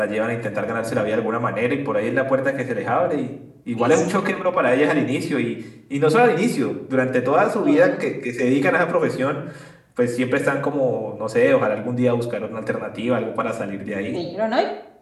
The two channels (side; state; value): both; identical; correlation 1.00